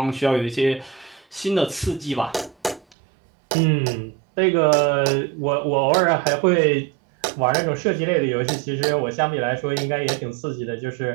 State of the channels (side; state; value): left; drops out; at 3.0 s